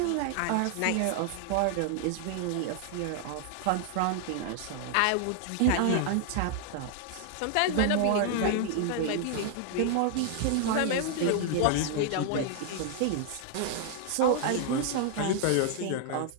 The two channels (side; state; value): both; different; correlation 0.00